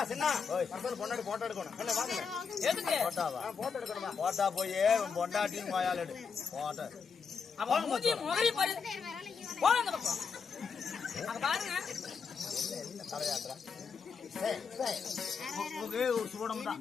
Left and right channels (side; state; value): right; quieter; 5.8 dB